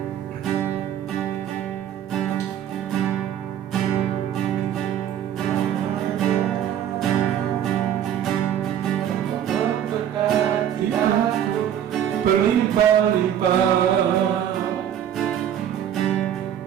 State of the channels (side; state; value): left; quieter; 10.1 dB